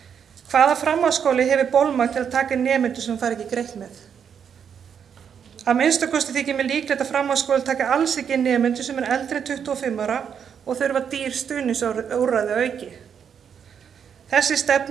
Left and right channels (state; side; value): quieter; left; 7.6 dB